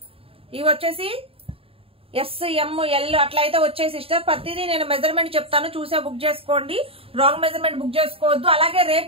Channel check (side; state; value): left; late; 0.27 ms